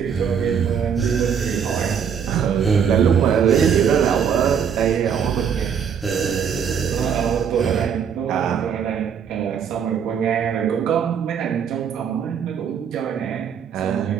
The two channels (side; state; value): left; quieter; 7.5 dB